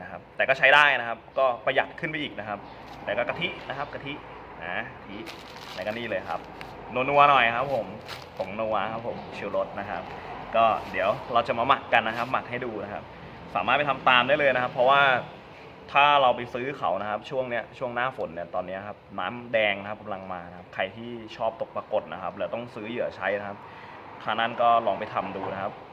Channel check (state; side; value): identical; both; correlation 1.00